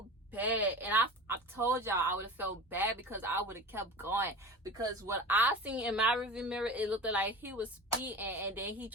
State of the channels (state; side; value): normal; both; correlation 0.34